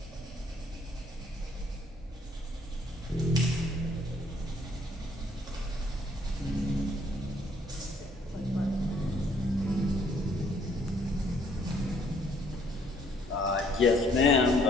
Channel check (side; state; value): both; normal; correlation 0.64